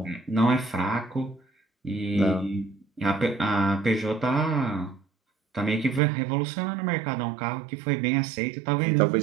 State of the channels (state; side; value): drops out; left; at 6.0 s